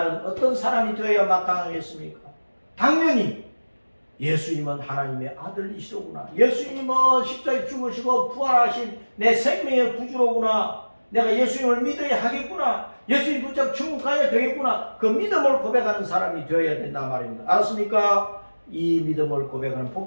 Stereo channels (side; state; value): both; inverted; correlation -1.00